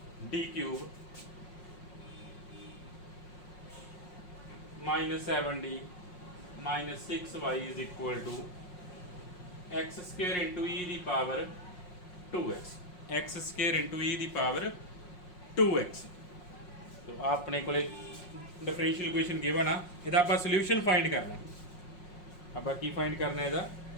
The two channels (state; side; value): late; right; 5.5 ms